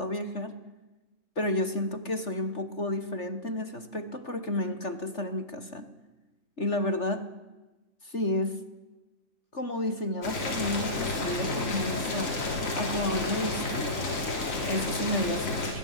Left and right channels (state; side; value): late; right; 3.9 ms